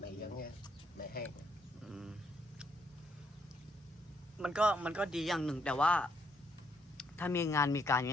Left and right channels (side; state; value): both; normal; correlation 0.72